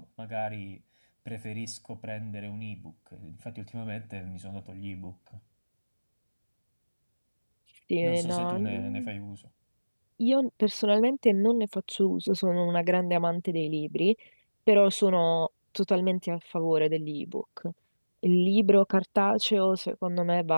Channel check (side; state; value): both; inverted; correlation -1.00